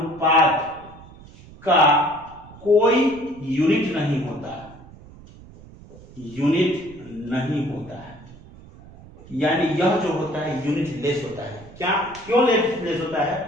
का कोई यूनिट नहीं होता, यानी यह जो होता है यूनिट लेस होता है। क्या? क्यों लेस होता है?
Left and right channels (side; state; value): right; noise; rumble, 20 dB below the sound